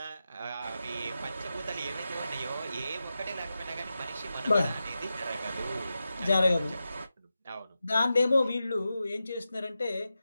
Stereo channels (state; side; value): inverted; both; correlation -0.91